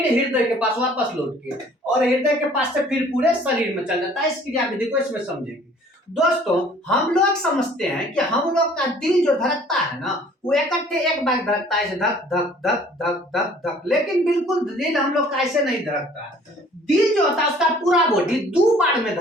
हृदय के पास वापस लौट के, और हृदय के पास से फिर पूरे शरीर में चल जाता है। इस क्रिया विधि को इसमें समझेंगे। दोस्तों हम लोग समझते हैं कि हम लोग का दिल जो धड़कता है ना, वो इकट्ठे एक बार धड़कता है, धक धक धक धक धक धक, लेकिन बिल्कुल दिल हम लोग का ऐसे नहीं धड़कता है। दिल जो होता है उसका पूरा बॉडी 2 बार में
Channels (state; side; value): normal; both; correlation 0.54